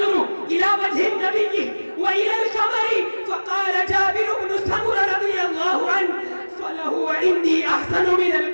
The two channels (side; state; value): both; inverted; correlation -1.00